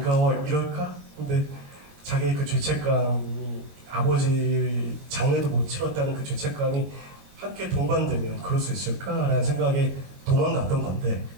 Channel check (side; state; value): left; late; 22 ms